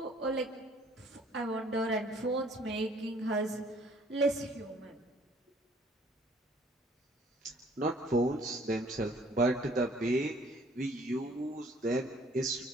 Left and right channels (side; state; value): both; normal; correlation 0.58